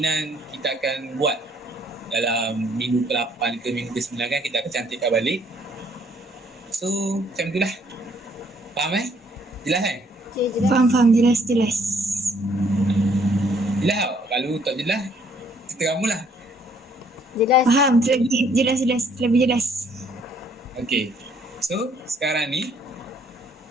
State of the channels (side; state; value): both; normal; correlation 0.64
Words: kita akan buat dalam minggu ke-8 ke minggu ke-9 kan kita akan cantikkan balik. So macam tu lah. Faham Jelas Okay, jelas. Faham. Jelas. Jelas tak? Kalau tak jelas, cerita kamu lah. Jelas. Faham. Lebih jelas. Okay. So sekarang ni